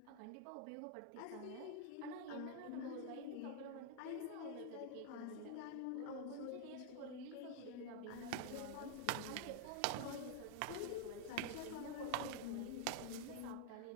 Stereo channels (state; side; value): different; both; correlation 0.00